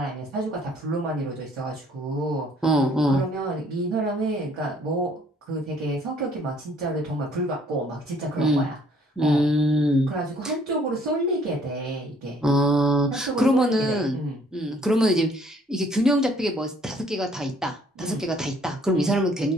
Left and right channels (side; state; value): both; normal; correlation 0.61